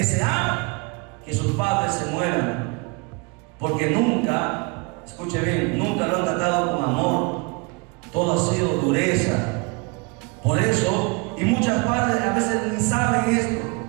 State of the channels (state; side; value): quieter; left; 30.0 dB